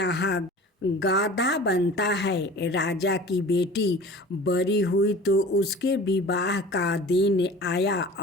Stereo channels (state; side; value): normal; both; correlation 0.41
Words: गाधा बनता है। राजा की बेटी बड़ी हुई तो उसके विवाह का दिन आया